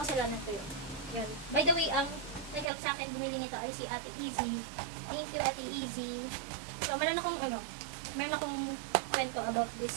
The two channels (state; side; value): drops out; left; at 2.7 s